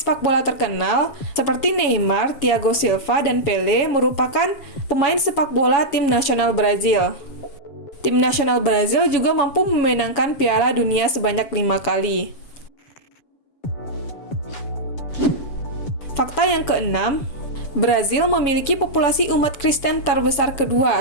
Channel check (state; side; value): late; right; 7.3 ms